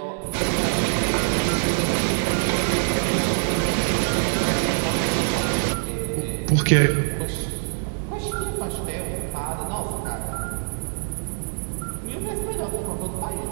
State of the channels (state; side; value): silent; left; digital silence